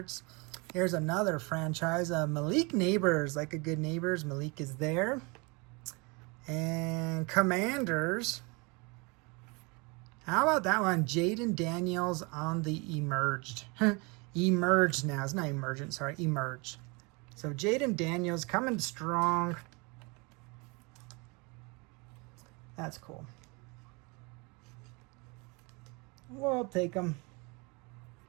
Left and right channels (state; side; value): quieter; left; 28.8 dB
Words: Here's another franchise. Malik Neighbors, like a good Neighbors. Malik is there. And Commanders. How about that one? Jaden Daniels on the Emerged. Emerged now. It's not Emergent, sorry. Emerged. So Jaden Daniels coming strong. That's cool. We'll take them.